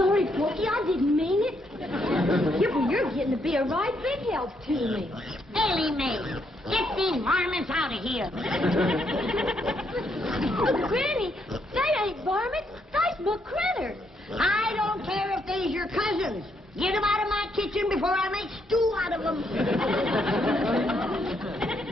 Porky, I didn't mean it. You're getting to be a right big help to me. Elly May, get these varmints out of here. Oh, Granny, they ain't varmints. They's my critters. I don't care if they's your cousins. Get them out of my kitchen before I make stew out of them.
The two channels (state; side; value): normal; both; correlation 0.75